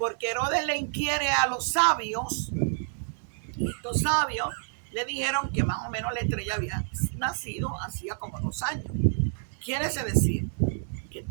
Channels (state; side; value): silent; left; digital silence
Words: Herodes le inquiere a los sabios, y estos sabios le dijeron que más o menos la estrella había nacido hacía como 2 años. Quiere decir que